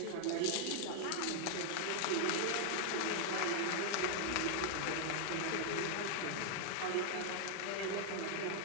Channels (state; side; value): different; both; correlation 0.00